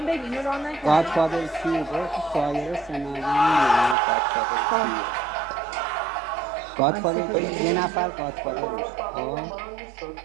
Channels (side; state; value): left; drops out; at 4.0 s